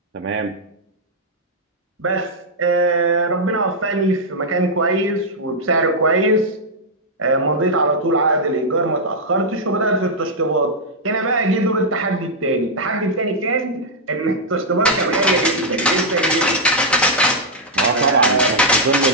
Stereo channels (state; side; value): normal; both; correlation -0.04